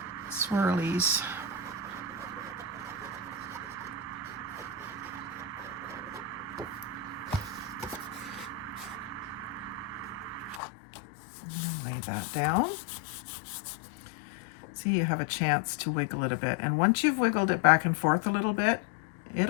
swirlies. And lay that down. See, you have a chance to wiggle it a bit. And once you've wiggled it back and forth a little bit,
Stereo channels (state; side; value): drops out; right; at 10.6 s